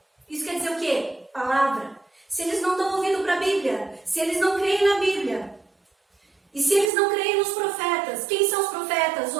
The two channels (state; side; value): drops out; left; at 6.9 s